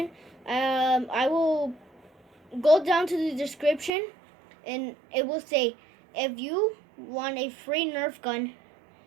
I will go down to the description and it will say, if you want a free nerf gun,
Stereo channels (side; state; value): left; drops out; at 3.9 s